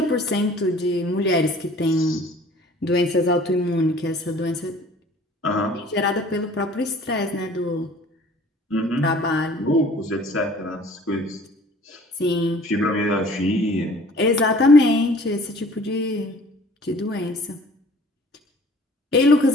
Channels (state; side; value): normal; both; correlation 0.51